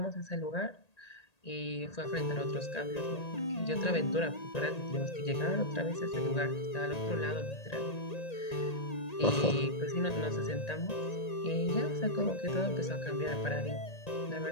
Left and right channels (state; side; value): late; right; 1.8 ms